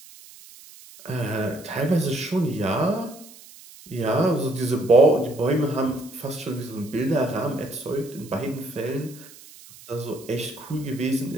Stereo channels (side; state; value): right; noise; hiss, 20 dB below the sound